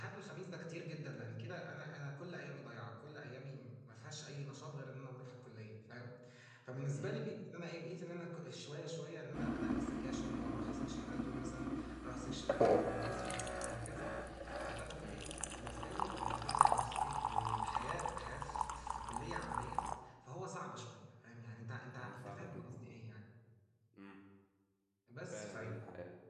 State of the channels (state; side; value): identical; both; correlation 1.00